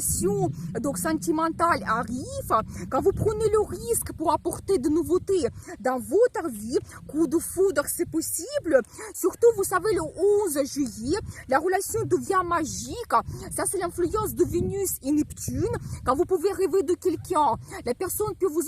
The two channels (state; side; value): identical; both; correlation 1.00